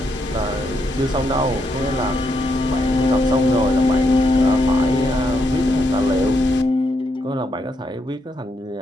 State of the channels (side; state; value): both; normal; correlation 0.79